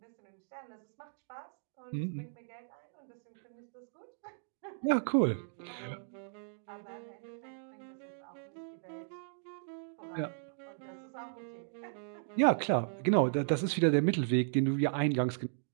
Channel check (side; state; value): left; silent; digital silence